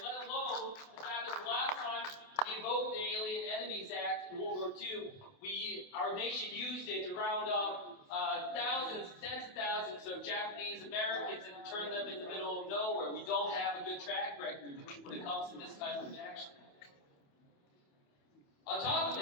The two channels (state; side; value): late; right; 28 ms